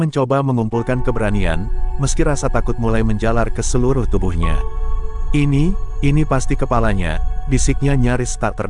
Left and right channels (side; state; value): both; identical; correlation 1.00